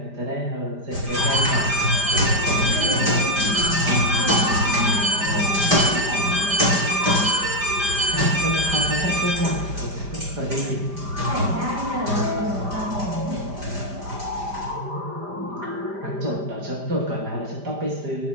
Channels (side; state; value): left; late; 5.0 ms